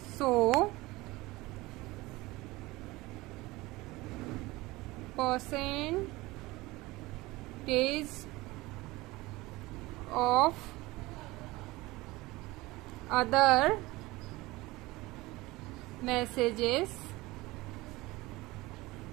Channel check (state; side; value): quieter; left; 20.7 dB